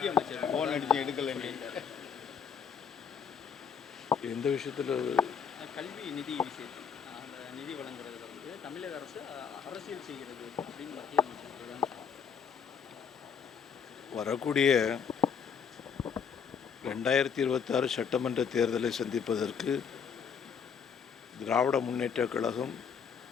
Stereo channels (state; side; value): quieter; right; 6.8 dB